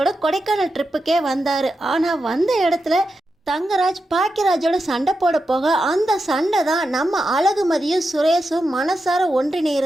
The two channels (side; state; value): both; normal; correlation 0.88